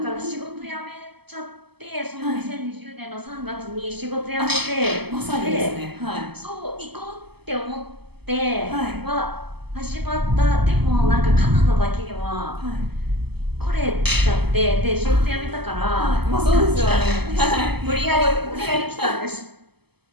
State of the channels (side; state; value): left; late; 0.97 ms